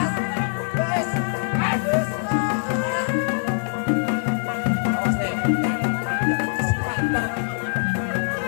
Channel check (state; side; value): silent; right; digital silence